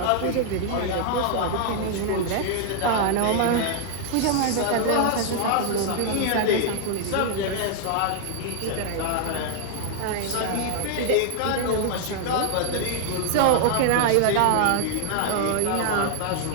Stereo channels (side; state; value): both; different; correlation 0.00